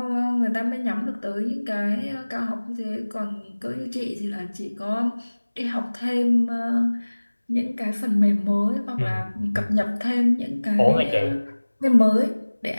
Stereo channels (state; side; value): inverted; both; correlation -1.00